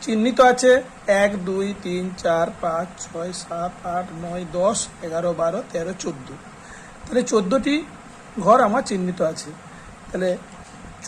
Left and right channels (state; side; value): identical; both; correlation 1.00